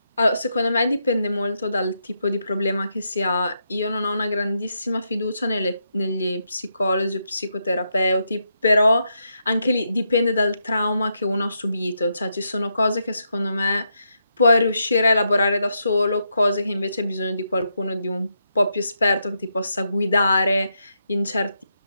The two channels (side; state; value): both; inverted; correlation -0.82